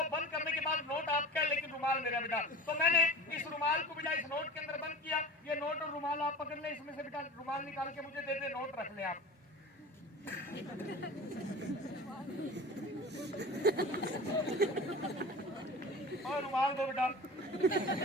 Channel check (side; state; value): both; normal; correlation 0.36